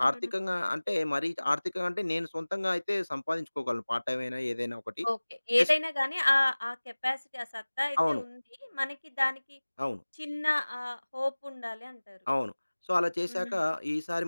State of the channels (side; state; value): both; inverted; correlation -1.00